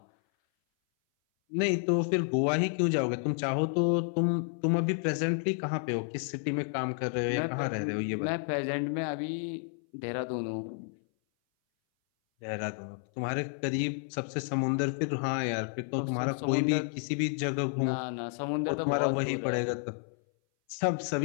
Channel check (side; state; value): right; silent; 57 dB below the other